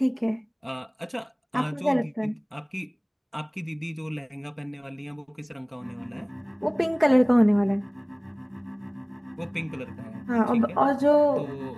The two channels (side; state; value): both; identical; correlation 1.00